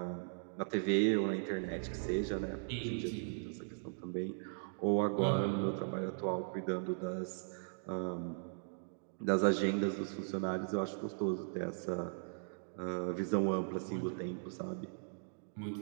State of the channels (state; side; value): silent; left; digital silence